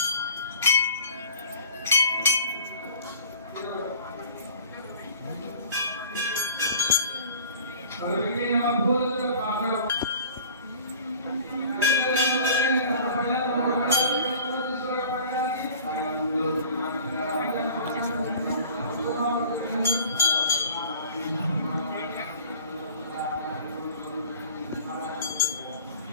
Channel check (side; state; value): both; inverted; correlation -0.44